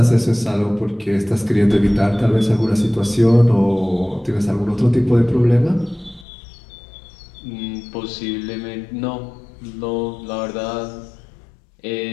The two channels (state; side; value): drops out; right; at 6.2 s